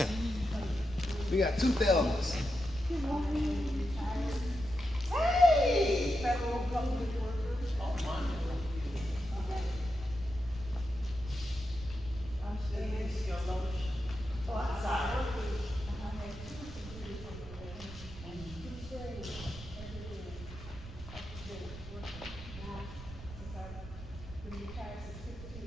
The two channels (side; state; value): right; noise; rumble, 13 dB below the sound